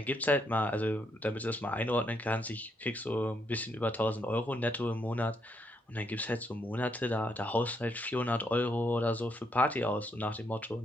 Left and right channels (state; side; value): normal; both; correlation 0.76